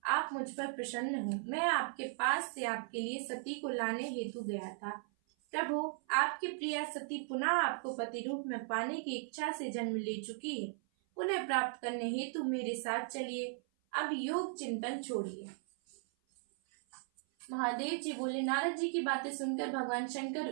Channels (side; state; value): left; silent; 53 dB below the other